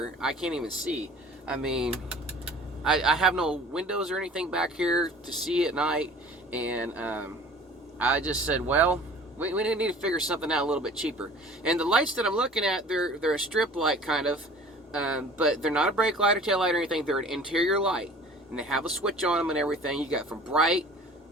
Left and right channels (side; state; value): both; normal; correlation 0.46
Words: I can't even see. I mean, I have no windows or anything back here to see at night, and I just said, well, we need to figure something out a little bit cheaper. And the lights that I'm looking at, they're a strip light kind of, but they're not a brake light or tail light or anything. They're an interior light, and they have a switch on them and everything. You got from bright